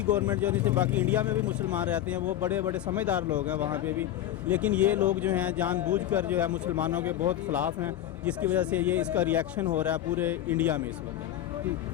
گورنمنٹ جو نہیں تھی، باقی انڈیا میں بھی مسلمان رہتے ہیں، وہ بڑے بڑے سمجھدار لوگ ہیں وہاں پہ بھی، لیکن یہ لوگ جو ہیں جان بوجھ کر جو ہے مسلمانوں کے بہت خلاف ہیں، جس کی وجہ سے یہ اس کا ریئیکشن ہو رہا ہے پورے انڈیا میں اس وقت.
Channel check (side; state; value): right; quieter; 12.2 dB